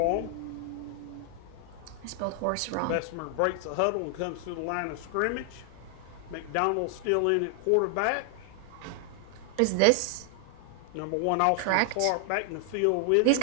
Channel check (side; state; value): both; different; correlation 0.00